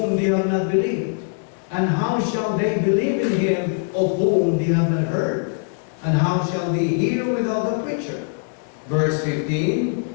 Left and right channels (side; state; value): right; silent; 63 dB below the other